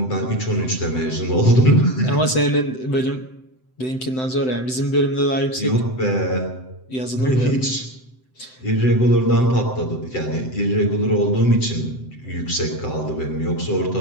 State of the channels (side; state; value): right; late; 7.8 ms